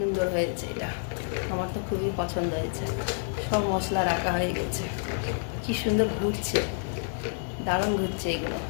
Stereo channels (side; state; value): right; silent; digital silence